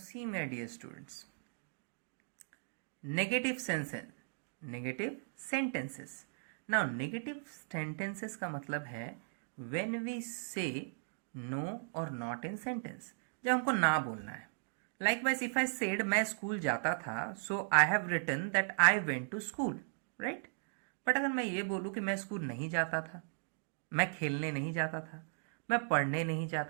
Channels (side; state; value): left; silent; digital silence